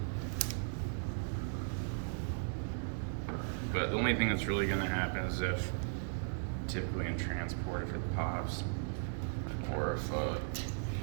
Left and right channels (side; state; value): left; silent; digital silence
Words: But the only thing that's really going to happen is if, typically in transport, if it pops, or if